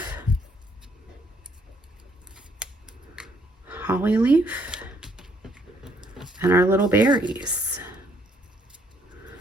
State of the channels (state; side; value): normal; both; correlation 0.67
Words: and our little berries.